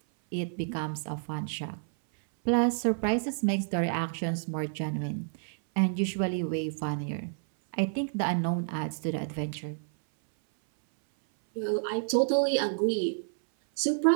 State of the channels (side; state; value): left; silent; 58 dB below the other